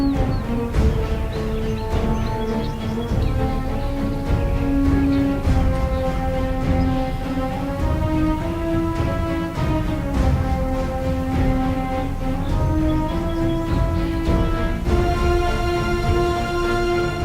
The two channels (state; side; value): identical; both; correlation 1.00